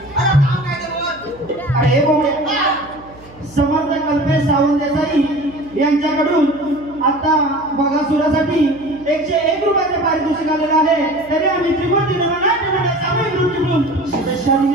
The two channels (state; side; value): noise; right; hum, 22 dB below the sound